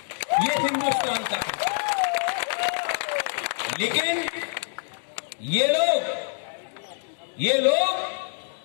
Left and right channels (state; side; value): silent; right; digital silence